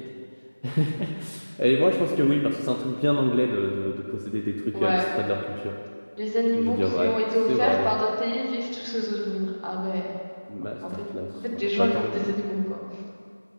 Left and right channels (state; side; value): inverted; both; correlation -1.00